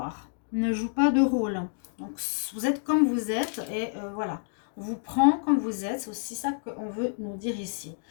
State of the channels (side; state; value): right; silent; digital silence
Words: Ne joue pas de rôle. Donc, vous êtes comme vous êtes et voilà. On vous prend comme vous êtes. C'est aussi ça qu'on veut nous dire ici.